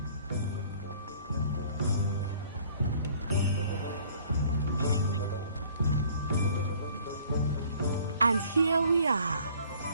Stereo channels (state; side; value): inverted; both; correlation -0.55